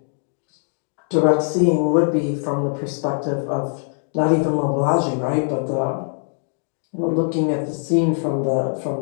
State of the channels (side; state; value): right; silent; digital silence